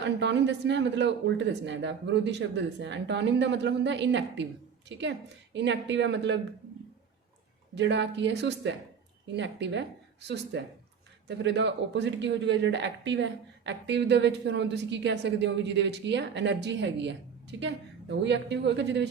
ਐਂਟੋਨਿਮ ਦੱਸਣਾ ਹੈ, ਮਤਲਬ ਉਲਟ ਦੱਸਣਾ ਹੈ, ਇਹਦਾ ਵਿਰੋਧੀ ਸ਼ਬਦ ਦੱਸਣਾ ਹੈ। ਐਂਟੋਨਿਮ ਦਾ ਮਤਲਬ ਹੁੰਦਾ ਇਨਐਕਟਿਵ, ਠੀਕ ਹੈ। ਇਨਐਕਟਿਵ ਹੈ ਮਤਲਬ ਜਿਹੜਾ ਕੀ ਹੈ, ਸੁਸਤ ਹੈ, ਇਨਐਕਟਿਵ ਹੈ, ਸੁਸਤ ਹੈ। ਤਾਂ ਫਿਰ ਇਹਦਾ ਓਪੋਜ਼ਿਟ ਕੀ ਹੋ ਜਾਊਗਾ, ਜਿਹੜਾ ਐਕਟਿਵ ਹੈ। ਐਕਟਿਵ ਦੇ ਵਿੱਚ ਫਿਰ ਹੁਣ ਤੁਸੀਂ ਕੀ ਕਹਿ ਸਕਦੇ ਹੋ ਵੀ ਜਿਹਦੇ ਵਿੱਚ ਕੀ ਹੈ, એનર્ਜੀ ਹੈਗੀ ਹੈ, ਠੀਕ ਹੈ। ਤਾਂ ਉਹੀ ਐਕਟਿਵ ਹੋਏਗਾ ਜਿਹਦੇ ਵਿੱਚ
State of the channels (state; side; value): quieter; left; 6.8 dB